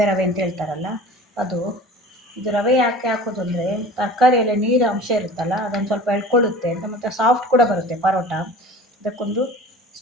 ರವೆ ಅಂತ ಹೇಳ್ತಾರಲ್ಲ ಅದು. ಇದು ರವೆ ಯಾಕೆ ಹಾಕೋದು ಅಂದರೆ, ತರಕಾರಿಯಲ್ಲಿ ನೀರು ಅಂಶ ಇರುತ್ತಲ್ಲ, ಅದನ್ನು ಸ್ವಲ್ಪ ಎಳ್ಕೊಳ್ಳುತ್ತೆ ಅಂತ, ಮತ್ತು ಸಾಫ್ಟ್ ಕೂಡ ಬರುತ್ತೆ ಪರೋಟ. ಇದಕ್ಕೊಂದು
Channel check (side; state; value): both; normal; correlation 0.41